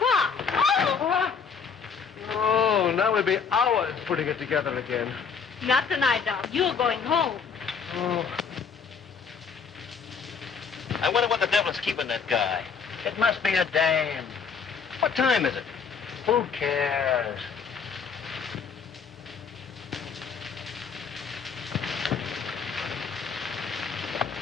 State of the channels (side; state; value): right; quieter; 6.1 dB